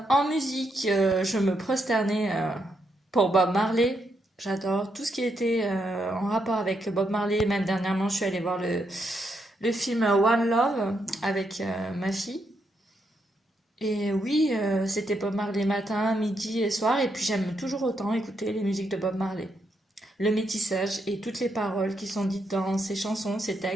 musique, je me prosternais pour Bob Marley. J'adore tout ce qui était en rapport avec Bob Marley. Même dernièrement, je suis allée voir le film One Love avec ma fille. Et oui, c'était Bob Marley matin, midi et soir. Et puis j'aime toujours autant écouter les musiques de Bob Marley. Le métissage et toutes les paroles qui sont dites dans ces chansons, ces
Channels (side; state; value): both; normal; correlation 0.79